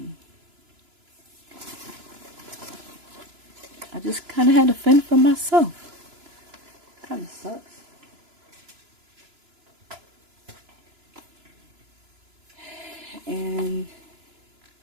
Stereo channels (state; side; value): late; left; 2.9 ms